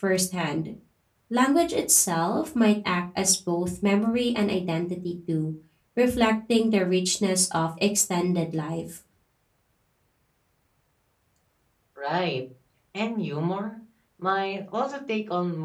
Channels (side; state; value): both; identical; correlation 1.00